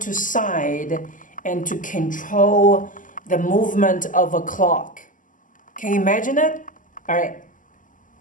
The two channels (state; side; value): late; right; 0.38 ms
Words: to side and to control the movement of a clock. Can you imagine it? Alright,